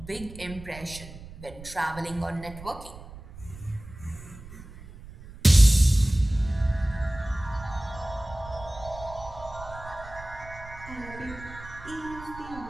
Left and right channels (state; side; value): noise; right; rumble, 15 dB below the sound